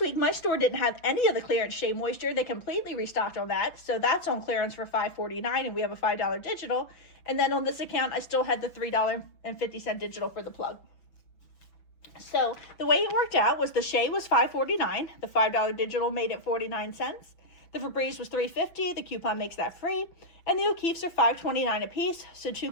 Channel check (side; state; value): right; late; 6.0 ms